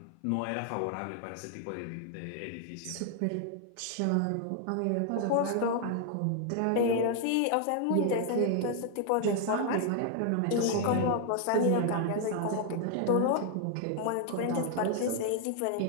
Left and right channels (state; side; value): different; both; correlation 0.00